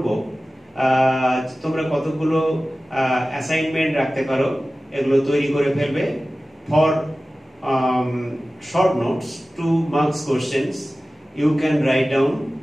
তোমরা কতগুলো অ্যাসাইনমেন্ট রাখতে পারো, এগুলো তৈরি করে ফেলবে। For short notes, 2 marks questions, you can write down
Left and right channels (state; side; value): normal; both; correlation 0.96